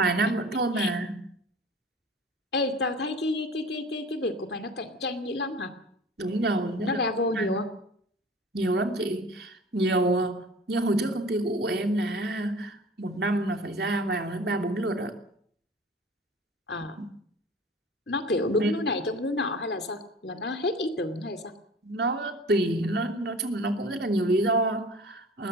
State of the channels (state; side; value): normal; both; correlation 0.42